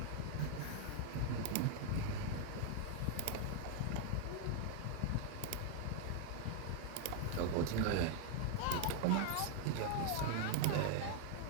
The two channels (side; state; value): both; different; correlation 0.00